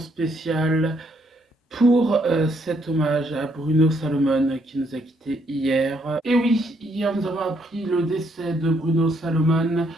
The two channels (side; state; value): both; normal; correlation 0.72